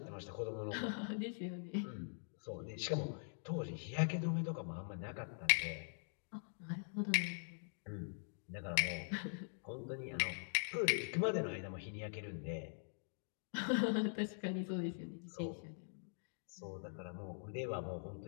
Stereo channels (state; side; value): silent; right; digital silence